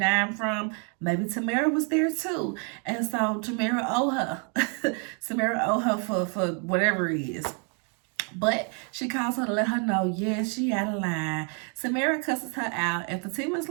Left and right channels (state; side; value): quieter; left; 38.5 dB